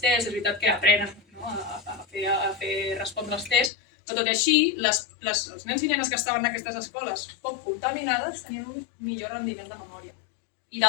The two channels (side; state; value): right; drops out; at 3.7 s